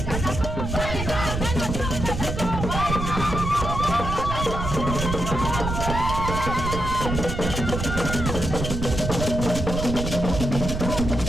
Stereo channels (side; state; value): right; noise; rumble, 4 dB below the sound